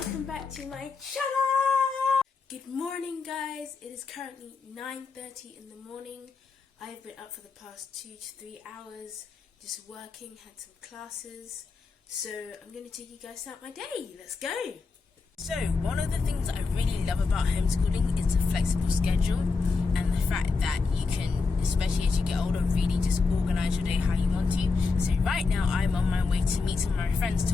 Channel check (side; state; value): right; quieter; 4.4 dB